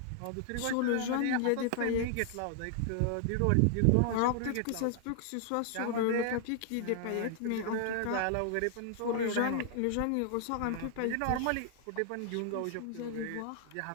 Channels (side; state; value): both; different; correlation 0.00